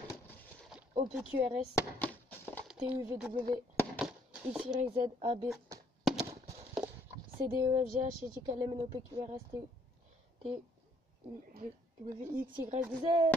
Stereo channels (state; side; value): normal; both; correlation 0.66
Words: O, P, Q, R, S, T, U, V, W, X, Y, Z, A, B, C, D, E, F, G, H, I, J, K, L, M, N, O, P, Q, R, S, T, U, V, W, X, Y, Z,